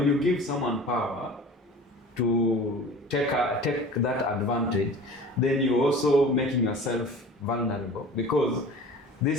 you give someone power to take that advantage, then you're also making yourself vulnerable, because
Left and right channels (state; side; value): normal; both; correlation 0.41